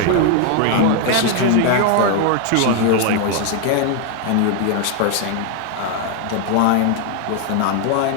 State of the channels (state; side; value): different; both; correlation 0.01